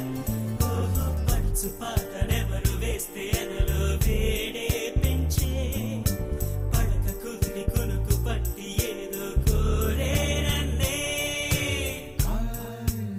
ఓహో పడుచు పాటనెవరు వేస్తే ఎదలో వేడే పెంచే పడక కుదిరి కొనుకు పట్టి ఏదో కోరే నన్నే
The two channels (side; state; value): both; identical; correlation 1.00